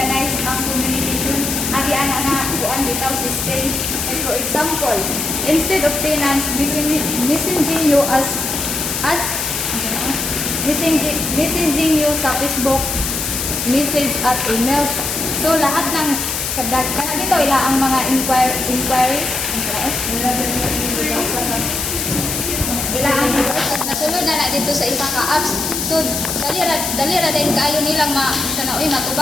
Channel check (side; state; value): left; noise; hiss, 2 dB below the sound